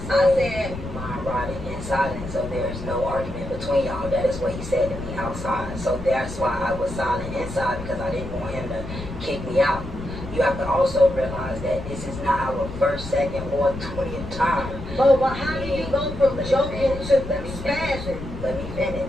said, mind riding in silence, so there's no argument between y'all. That is what he said to me outside. So that's why I was silent inside, because I didn't want him to kick me out. You have to also realize that this is not our first, second, or 20th time. but how do you go from joking to spazzing? Let me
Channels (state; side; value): noise; left; rumble, 10 dB below the sound